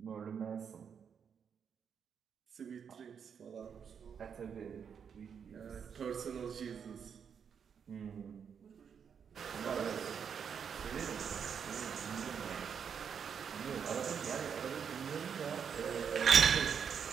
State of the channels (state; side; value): quieter; left; 7.2 dB